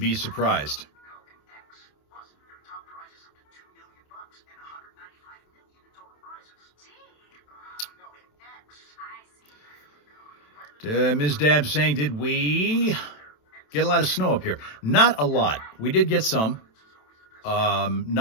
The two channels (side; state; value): right; late; 27 ms